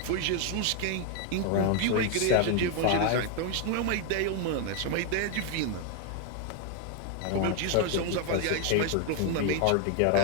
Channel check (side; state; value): both; different; correlation 0.01